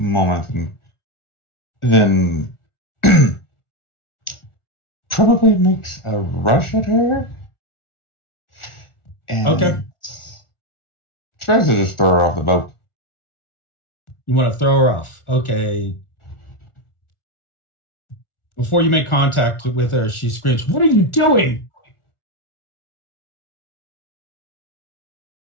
and then probably makes a rush at her. And Okay. tries to just throw her off the boat. You want to throw her off. Okay. Before you make contact with her, she screams, "What are you doing?"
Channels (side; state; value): right; late; 1.4 ms